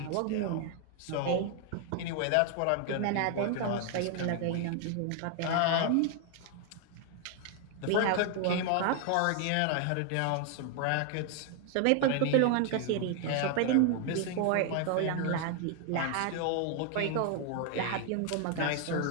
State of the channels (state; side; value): different; both; correlation 0.00